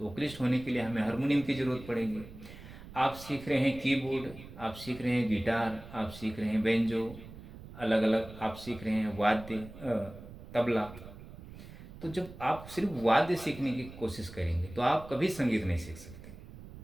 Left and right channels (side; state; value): right; noise; rumble, 16 dB below the sound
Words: वोकलिस्ट होने के लिए हमें हारमोनियम की ज़रूरत पड़ेगी। आप सीख रहे हैं कीबोर्ड, आप सीख रहे हैं गिटार, आप सीख रहे हैं बेंजो, अलग अलग आप सीख रहे हैं वाद्य, तबला। तो जब आप सिर्फ वाद्य सीखने की कोशिश करेंगे तो आप कभी संगीत नहीं सीख सकते।